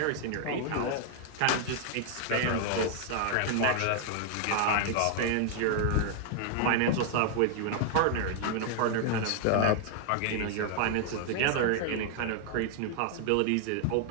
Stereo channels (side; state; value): both; different; correlation 0.00